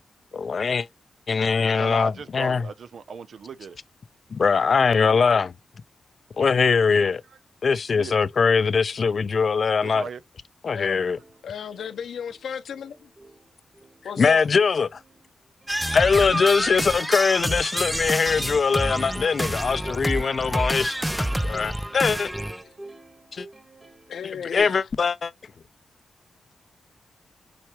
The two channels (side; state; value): right; quieter; 4.3 dB